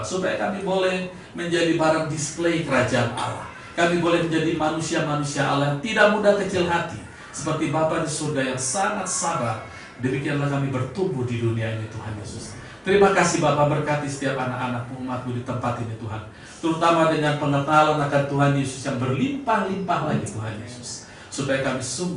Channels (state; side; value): identical; both; correlation 1.00